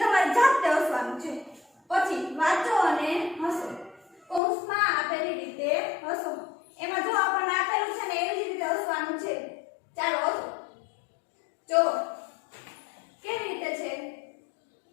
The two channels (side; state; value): right; drops out; at 4.4 s